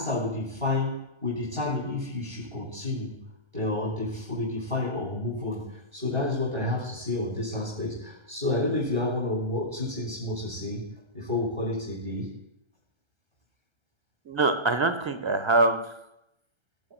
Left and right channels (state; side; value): late; left; 1.3 ms